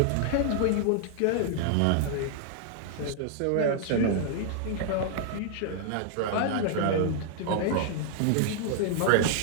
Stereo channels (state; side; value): different; both; correlation -0.01